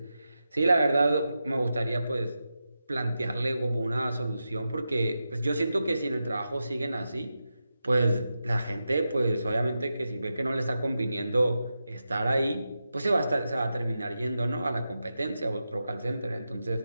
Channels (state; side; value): inverted; both; correlation -0.90